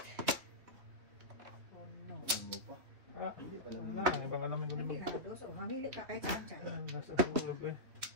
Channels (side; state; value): left; late; 3.3 ms